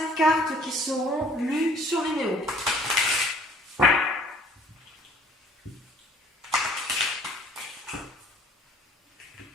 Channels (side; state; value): both; normal; correlation 0.55